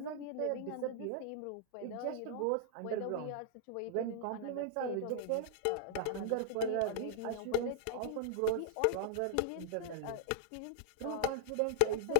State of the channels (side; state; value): both; different; correlation -0.01